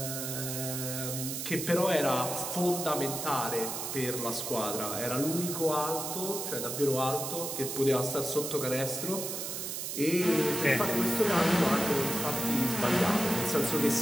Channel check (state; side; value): noise; right; hiss, 4 dB below the sound